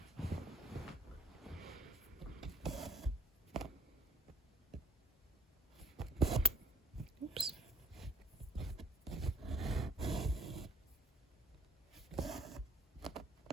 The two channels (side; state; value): both; normal; correlation 0.45